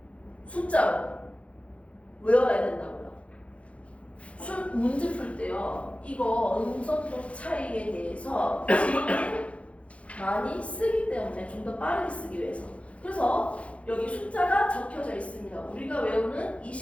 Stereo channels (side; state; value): right; late; 0.063 ms